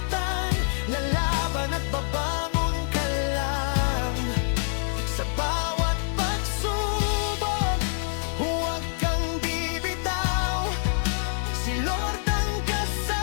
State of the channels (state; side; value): silent; right; digital silence